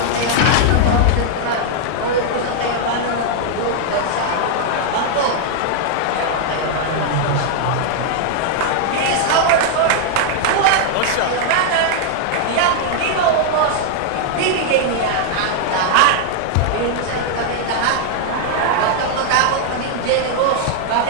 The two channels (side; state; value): both; different; correlation 0.00